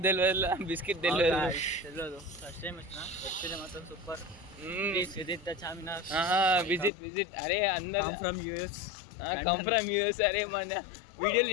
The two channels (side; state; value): right; drops out; at 6.9 s